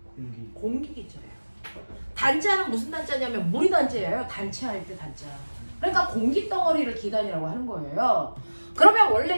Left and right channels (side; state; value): both; inverted; correlation -1.00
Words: 공기 기자예요. 단자는 무슨 단자냐면 물이 단자예요. 단체할 때 단자. 그러니까 공기 덩어리를 기단이라고 하는 거예요. 그러면